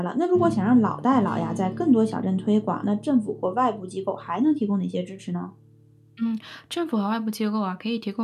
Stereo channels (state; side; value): identical; both; correlation 1.00